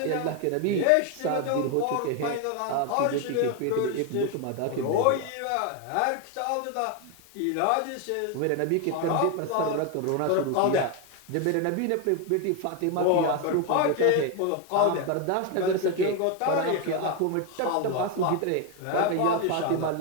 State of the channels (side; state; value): both; different; correlation 0.01